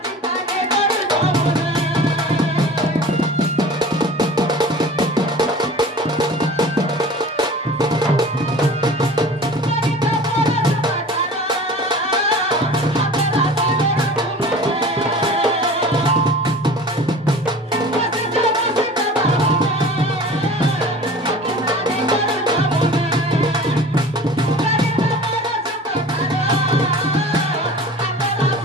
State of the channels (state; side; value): normal; both; correlation 0.41